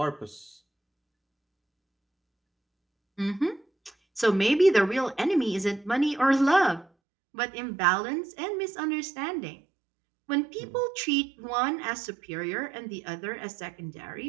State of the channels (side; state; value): left; drops out; at 6.9 s